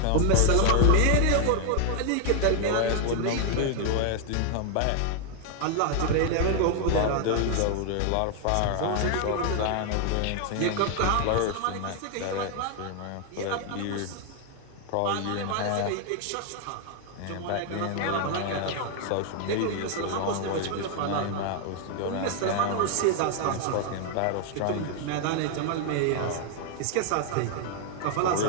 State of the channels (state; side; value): different; both; correlation 0.00